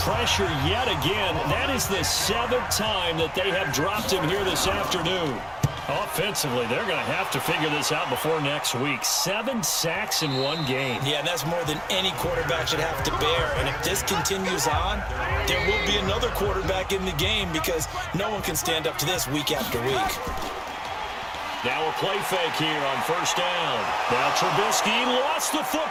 pressure yet again. That is the 7th time that they have dropped him here this afternoon. Offensively, they're going to have to figure this out before next week. 7 sacks in one game. Yeah, and that's more than any quarterback should have to bear. And if this continues on, there will be another quarterback in the game because no one can stand up to this week after week. Now a play fake here on first down. Now Trubisky lost the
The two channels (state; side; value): identical; both; correlation 1.00